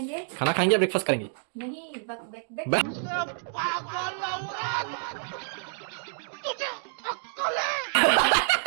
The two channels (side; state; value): left; silent; digital silence